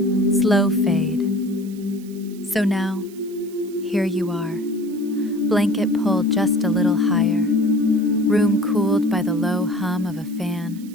Slow fade. So now, here you are. Blanket pulled just a little higher, room cooled by the low hum of a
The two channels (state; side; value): noise; right; hiss, 23 dB below the sound